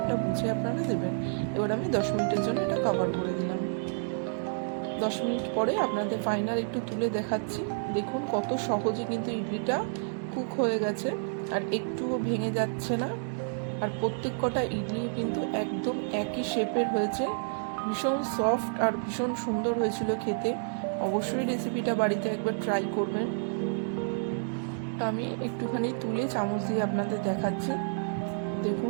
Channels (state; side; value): silent; left; digital silence